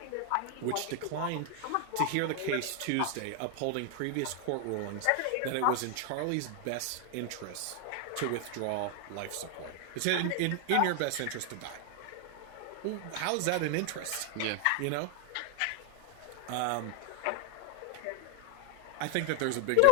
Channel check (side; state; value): both; different; correlation 0.00